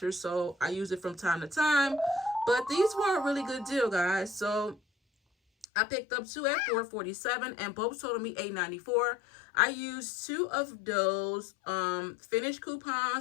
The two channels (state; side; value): drops out; right; at 5.7 s